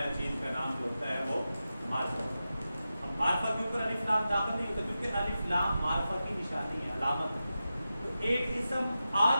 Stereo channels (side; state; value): both; inverted; correlation -0.92